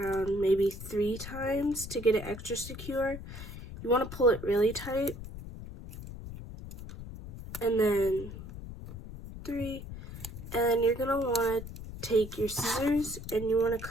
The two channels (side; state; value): left; noise; rumble, 11 dB below the sound